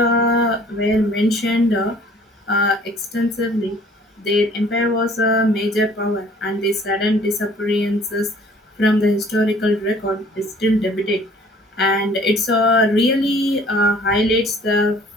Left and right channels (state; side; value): normal; both; correlation 0.54